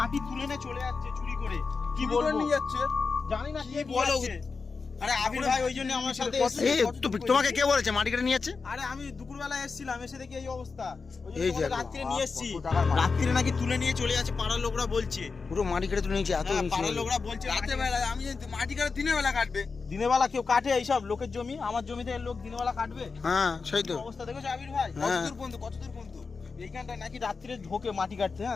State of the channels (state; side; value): quieter; right; 4.7 dB